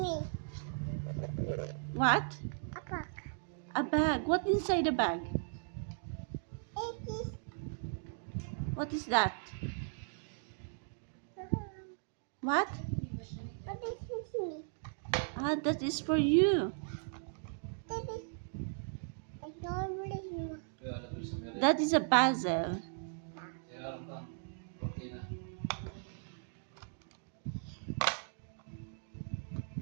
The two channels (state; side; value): silent; left; digital silence